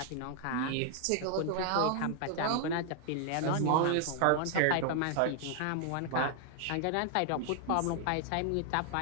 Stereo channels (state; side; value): different; both; correlation 0.00